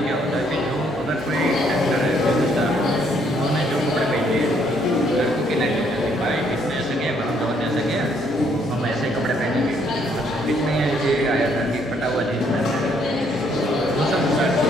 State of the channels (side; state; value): both; normal; correlation 0.68